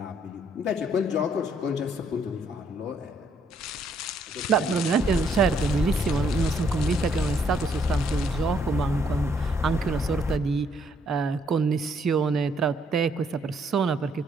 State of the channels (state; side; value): normal; both; correlation 0.69